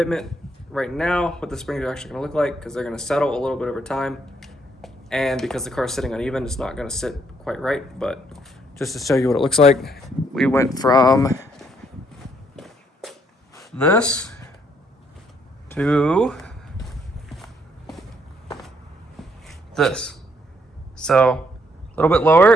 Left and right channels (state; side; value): normal; both; correlation 0.71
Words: right now what the springs are actually going to look like, because they're going to settle a little bit over time, and because the car is sitting uneven, it's not going to sit quite right. But just to show you what it looks like, we went from this to this, so a little bit